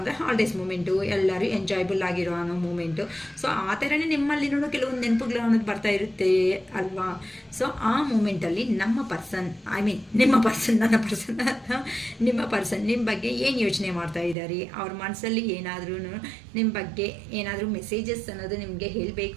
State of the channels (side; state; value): left; drops out; at 14.4 s